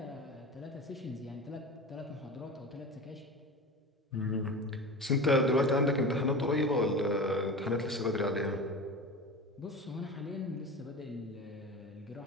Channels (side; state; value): both; normal; correlation 0.31